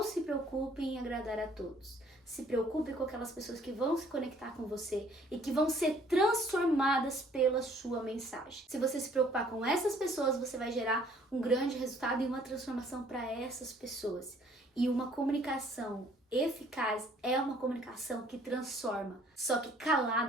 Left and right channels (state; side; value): normal; both; correlation 0.59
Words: se preocupe em agradar a todos. Se preocupe com aquelas pessoas que vão se conectar com você e que vão ser transformadas pela sua mensagem. Se você se preocupar com essas pessoas, você vai gerar um grande resultado e uma transformação para essas pessoas. E uma comunicação eficaz é uma comunicação que transforma. Só que